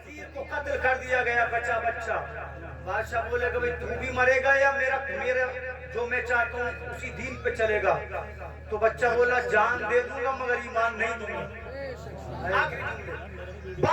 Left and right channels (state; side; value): identical; both; correlation 1.00